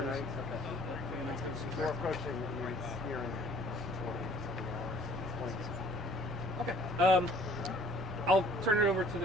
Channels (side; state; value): both; normal; correlation 0.54